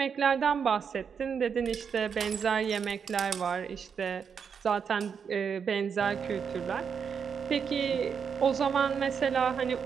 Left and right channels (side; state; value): left; quieter; 6.7 dB